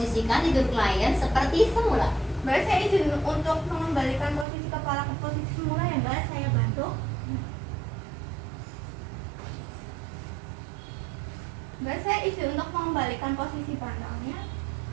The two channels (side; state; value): left; drops out; at 4.5 s